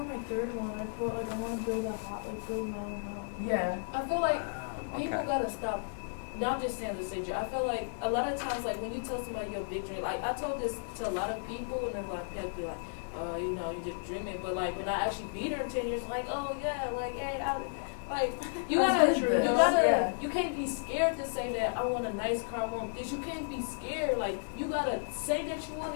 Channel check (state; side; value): silent; right; 56 dB below the other